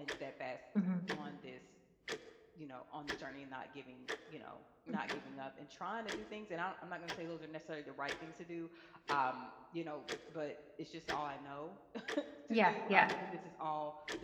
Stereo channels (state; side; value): identical; both; correlation 1.00